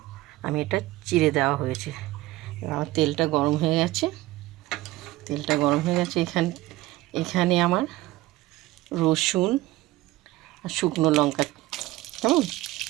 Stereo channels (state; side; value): quieter; left; 17.8 dB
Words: আমি এটা চিড়ে দেওয়া হয়েছে। আমার তেলটা গরম হয়ে গেছে। এখানে আমার রসুন আর শুকনো লঙ্কা, কেমন